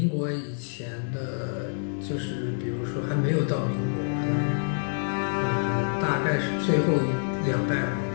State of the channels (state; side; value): silent; right; digital silence